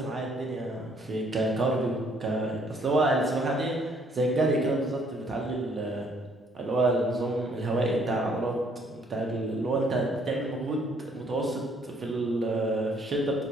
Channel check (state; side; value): normal; both; correlation 0.65